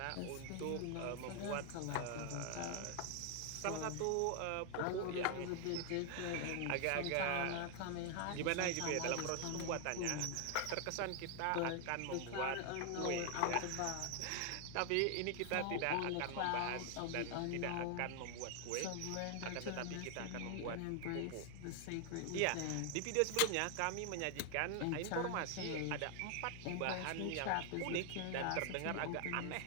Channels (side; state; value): both; different; correlation 0.00